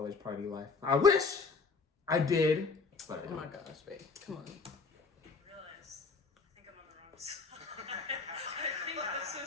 party life. I wish I did. But oh my gosh, babe. Come on. I realize I think I'm on the wrong side. I think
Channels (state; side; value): quieter; right; 4.5 dB